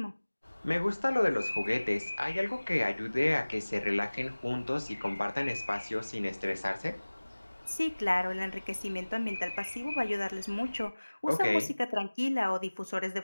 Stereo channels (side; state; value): both; inverted; correlation -1.00